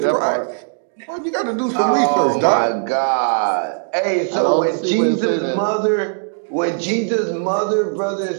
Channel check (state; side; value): silent; left; digital silence